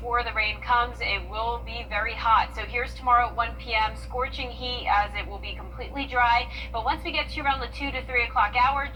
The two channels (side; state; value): both; identical; correlation 1.00